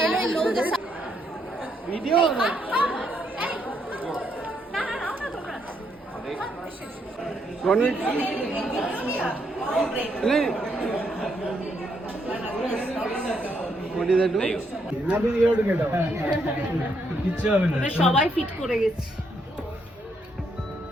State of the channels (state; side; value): normal; both; correlation 0.75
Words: लो इन लोगों के साथ ভিডিও সবাই ফিট করে গেছে।